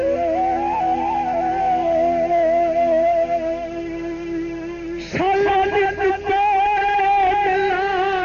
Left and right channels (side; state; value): both; identical; correlation 1.00